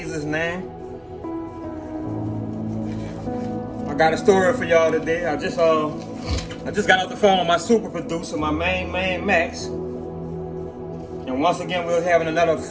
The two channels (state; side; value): identical; both; correlation 1.00